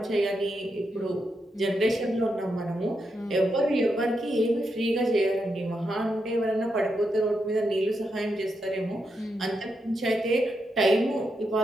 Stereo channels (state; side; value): normal; both; correlation 0.83